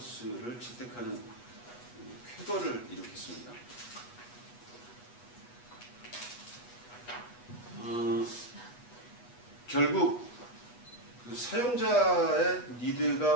채택하는 쾌거를 일으켰습니다. 결국 그 사용자의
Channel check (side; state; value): right; late; 8.2 ms